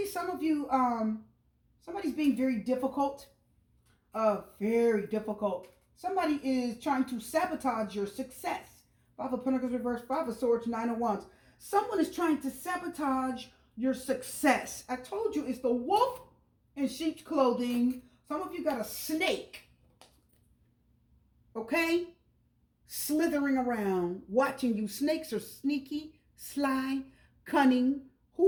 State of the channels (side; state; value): both; identical; correlation 1.00